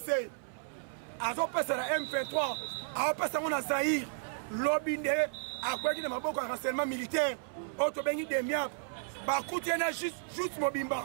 Azo passe à la M23 Azo passe à mon Zahir Lobinde à quoi qu'il y a un renseignement militaire, auto bengi de miap, bakutiena juste mobimba,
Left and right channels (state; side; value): silent; left; 56 dB below the other